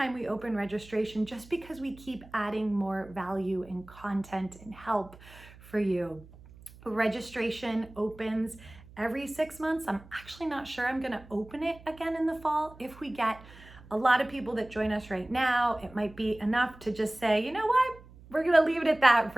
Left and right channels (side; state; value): right; noise; hum, 21 dB below the sound